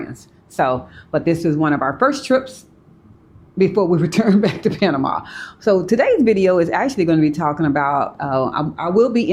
So, but this is one of our first trips before we return back to Panama. So today's video is actually going to be talking about, I will be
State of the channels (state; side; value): identical; both; correlation 1.00